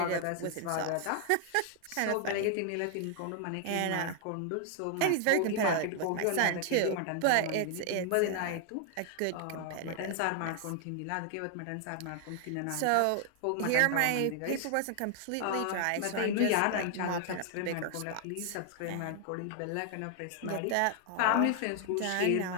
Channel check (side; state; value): both; different; correlation 0.00